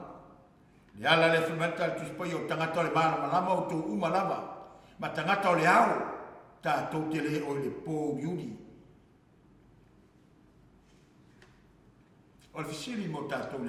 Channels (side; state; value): both; identical; correlation 1.00